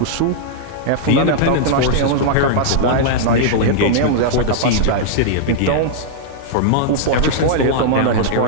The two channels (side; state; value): both; different; correlation -0.02